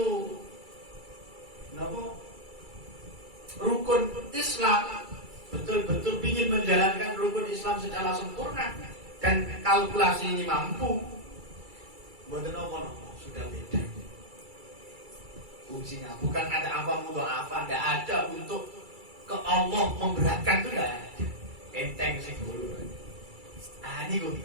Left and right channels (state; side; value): late; left; 2.3 ms